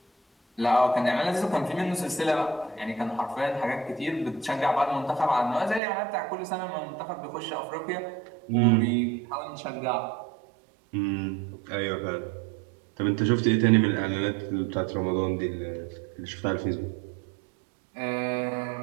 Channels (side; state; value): left; drops out; at 5.8 s